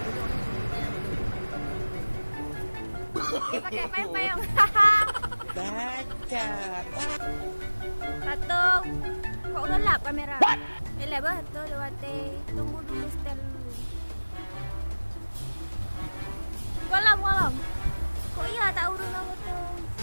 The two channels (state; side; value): inverted; both; correlation -1.00